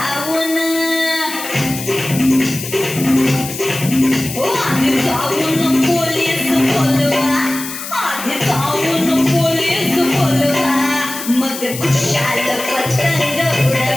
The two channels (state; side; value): noise; left; hiss, 9 dB below the sound